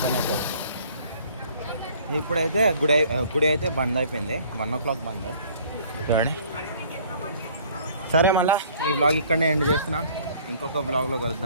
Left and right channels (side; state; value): both; inverted; correlation -0.55